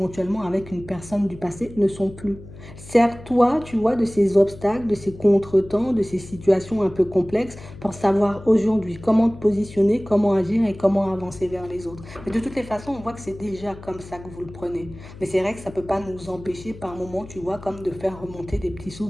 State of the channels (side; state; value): left; noise; hum, 17 dB below the sound